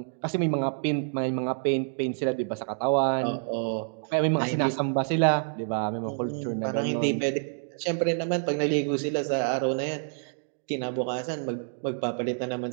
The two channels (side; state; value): left; silent; digital silence